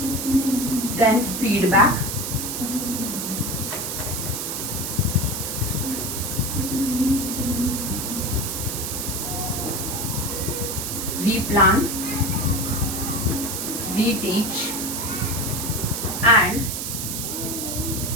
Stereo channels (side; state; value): right; noise; hiss, 3 dB below the sound